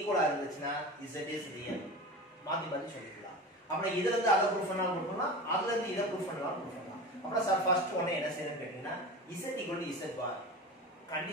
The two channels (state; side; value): normal; both; correlation 0.30